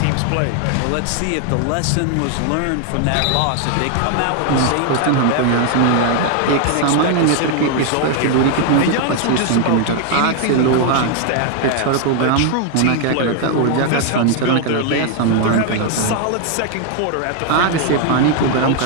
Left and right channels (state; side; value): different; both; correlation 0.00